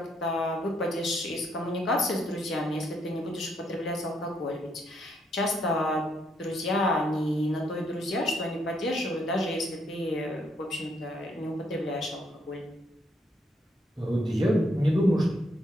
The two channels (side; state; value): both; normal; correlation 0.73